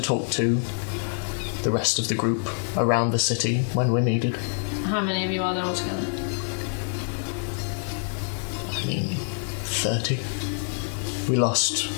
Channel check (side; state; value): right; silent; digital silence